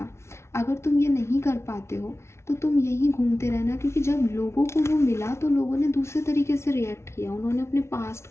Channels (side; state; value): right; late; 0.13 ms